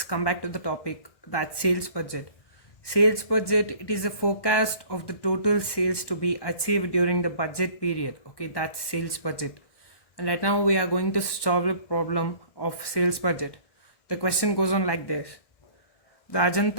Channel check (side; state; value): right; late; 1.1 ms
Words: come back to the topic, that sales budget. Sales budget, it is a forecast of the total sales to be achieved during the budget period. Okay, that's sales budget. And right now we are going to solve a problem of sales budget. The question goes on like this. The